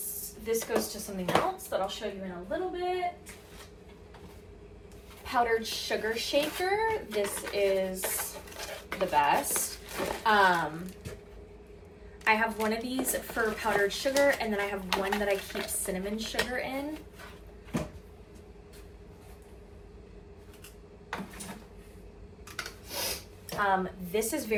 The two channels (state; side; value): identical; both; correlation 1.00